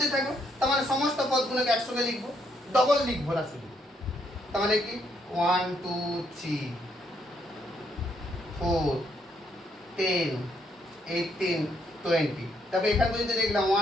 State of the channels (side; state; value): both; normal; correlation 0.73